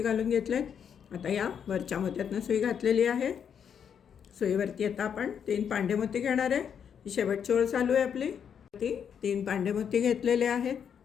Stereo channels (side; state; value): right; quieter; 7.8 dB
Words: घालून घेतलेत. आता या वरच्या मोत्यातनं सुई घातलेली आहे. सुईवरती आता आपण 3 पांढरे मोती घेणार आहे. ही शेवटची ओळ चालू आहे आपली. ती 3 पांडेमोती घेतलेले आहेत.